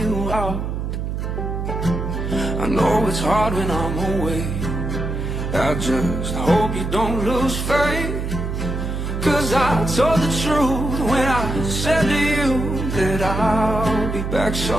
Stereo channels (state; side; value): noise; right; hum, 3 dB below the sound